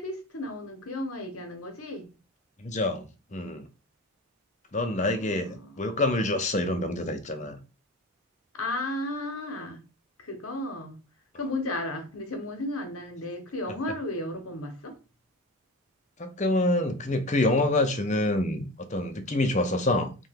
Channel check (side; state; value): both; normal; correlation 0.32